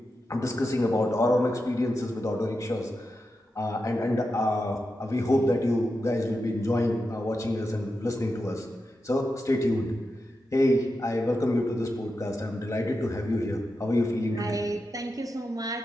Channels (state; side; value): normal; both; correlation 0.89